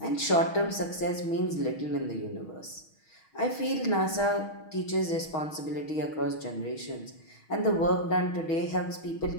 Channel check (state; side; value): late; right; 6.3 ms